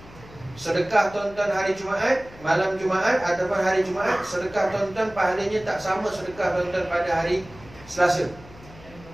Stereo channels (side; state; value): left; noise; hum, 20 dB below the sound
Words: Sedekah tuan-tuan hari Jumaat, malam Jumaat ataupun hari Jumaat, sedekah tuan-tuan pahalanya tak sama sedekah tuan-tuan pada hari Selasa.